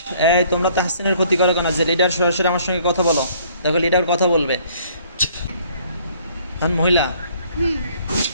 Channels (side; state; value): both; inverted; correlation -0.59